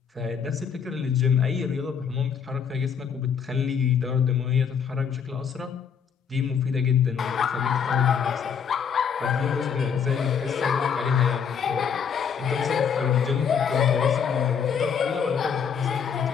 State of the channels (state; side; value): quieter; right; 7.1 dB